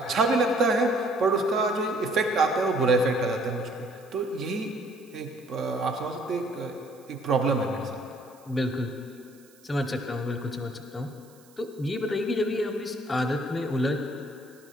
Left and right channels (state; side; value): noise; right; hiss, 28 dB below the sound